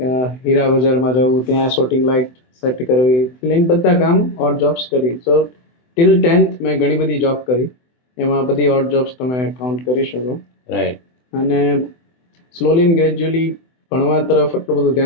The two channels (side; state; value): right; late; 24 ms